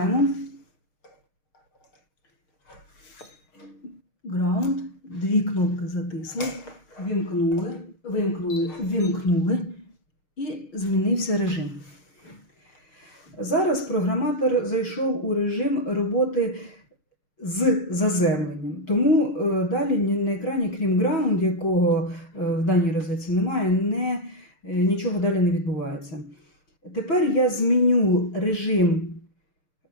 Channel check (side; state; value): right; late; 6.5 ms